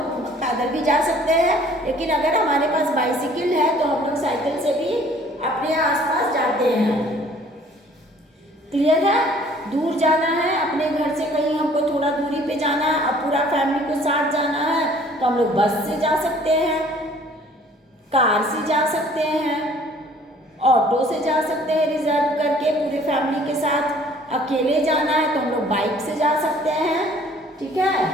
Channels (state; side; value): normal; both; correlation 0.55